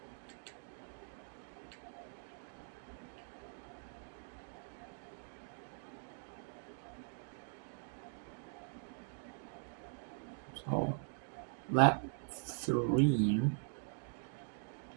So lap 3.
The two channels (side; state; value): left; silent; digital silence